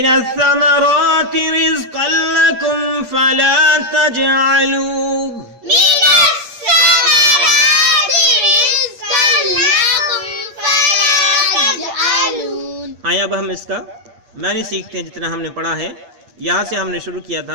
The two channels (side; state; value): left; late; 8.6 ms